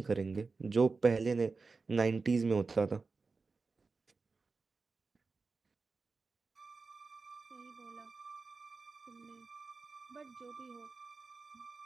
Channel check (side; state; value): left; quieter; 4.2 dB